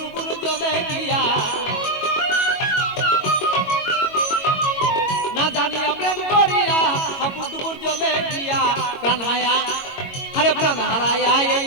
জলে গিয়া। না জানিয়া প্রেম করিয়া হাপুর টুকুর জলে গিয়া। প্রাণ হায়া আরে প্রাণ হারাইয়া এই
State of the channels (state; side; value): late; right; 22 ms